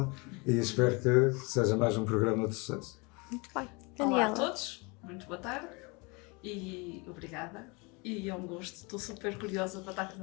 E espero que seja mais um programa de sucesso. Muito bem. Olá Daniela. a todos, muito boa tarde e obrigada. E é um gosto, estou super curiosa para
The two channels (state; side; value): quieter; right; 28.7 dB